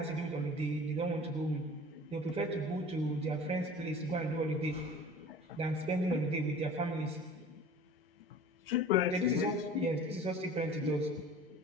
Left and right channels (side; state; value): both; normal; correlation 0.43